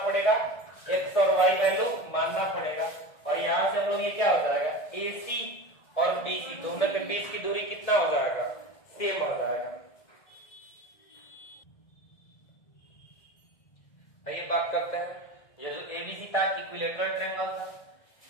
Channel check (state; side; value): late; right; 1.6 ms